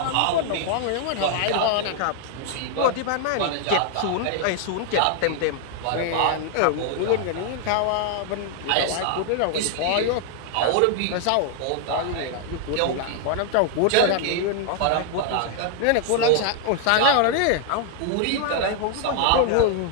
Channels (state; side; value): different; both; correlation 0.00